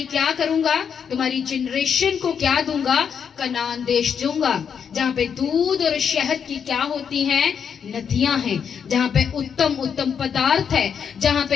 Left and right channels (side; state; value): right; quieter; 7.2 dB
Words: क्या करूंगा, तुम्हारी जनरेशन को क्या दूंगा, कनान देश दूंगा, जहाँ पे दूध और शहद की क्या होती हैं, नदियां हैं, जहाँ पे उत्तम उत्तम पदार्थ है, जहाँ